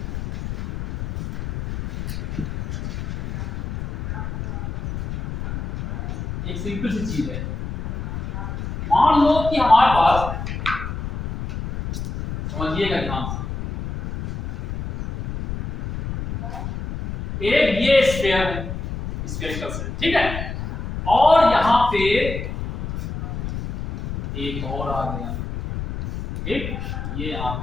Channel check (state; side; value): noise; left; rumble, 6 dB below the sound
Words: एक सिंपल सी चीज है, मान लो कि हमारे पास, समझिएगा ध्यान से, एक ये स्फीयर है, स्फेरिकल सेल, ठीक है, और यहां पे एक और आ गया, ठीक, ये यहाँ